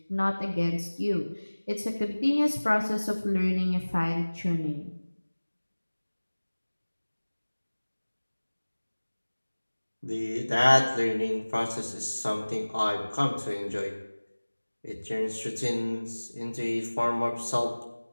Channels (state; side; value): inverted; both; correlation -1.00